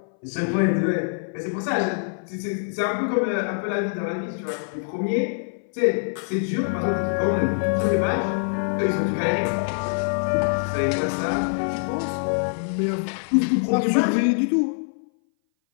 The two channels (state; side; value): silent; right; 59 dB below the other